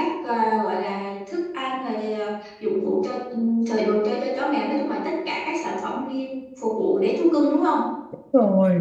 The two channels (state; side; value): identical; both; correlation 1.00